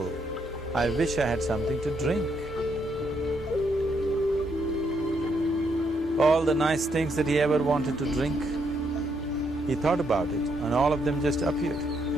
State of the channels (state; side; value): normal; both; correlation 0.75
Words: I wish I had something to drink. All the nice things that he ever wanted to drink, he thought about it and all of them just appeared